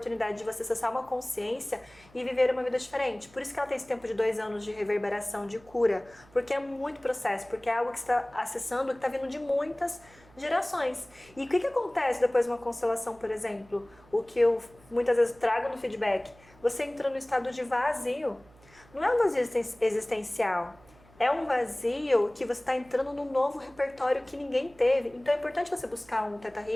de você acessar uma consciência e viver uma vida diferente. Por isso que ela tem esse tempo de 2 anos de reverberação, de cura, porque é muito processo, porque é algo que você está acessando, que está vindo de muitas gerações. E o que acontece depois de uma constelação, por exemplo? O que eu muitas vezes trago no feedback, você entra no estado de vazio. Não é um vazio existencial. É um vazio que você está entrando num novo repertório que ninguém teve. Então é importante você buscar um Theta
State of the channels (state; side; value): noise; right; hum, 27 dB below the sound